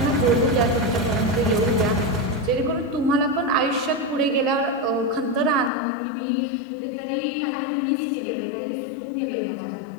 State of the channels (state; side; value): drops out; right; at 5.7 s